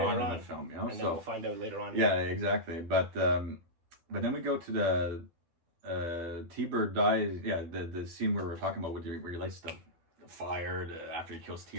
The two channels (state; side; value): late; left; 12 ms